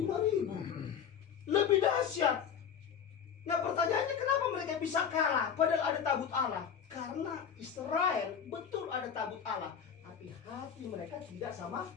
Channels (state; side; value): quieter; right; 7.7 dB